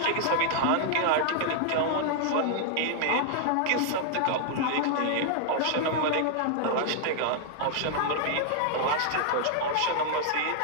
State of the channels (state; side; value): different; both; correlation -0.01